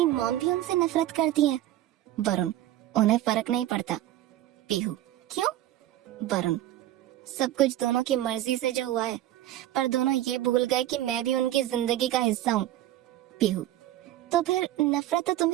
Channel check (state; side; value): quieter; left; 13.7 dB